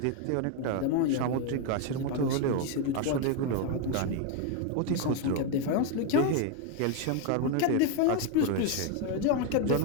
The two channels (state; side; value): different; both; correlation 0.01